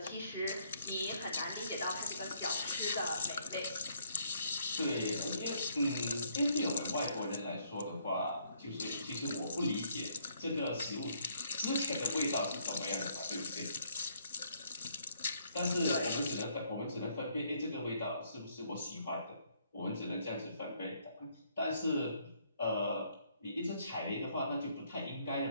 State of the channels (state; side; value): inverted; both; correlation -0.68